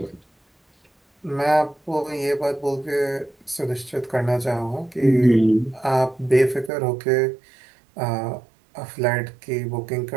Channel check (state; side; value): drops out; left; at 6.7 s